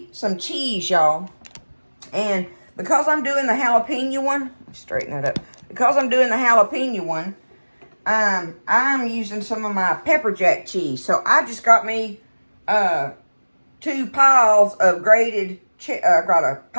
some cheese, y'all. And because I'm doing the jalapeno one, straighten that up. Because I'm doing the jalapeno one, I'm using some of my pepper jack cheese. So I just got me 2 piles of grated got a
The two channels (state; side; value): inverted; both; correlation -1.00